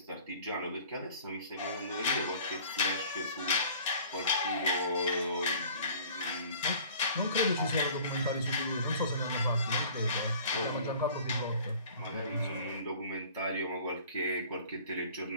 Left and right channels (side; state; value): both; inverted; correlation -0.48